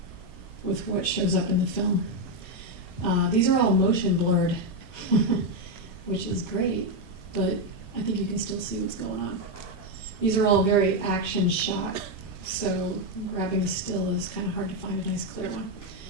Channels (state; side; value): normal; both; correlation 0.05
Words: with what shows up in the film. These are all motion blurred, which is great, but I think you can still see what's going on. These are all very action shot, so grabbing a still is kind of hard to find a nice clear one.